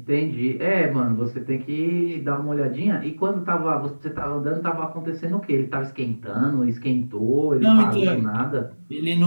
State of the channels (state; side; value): inverted; both; correlation -1.00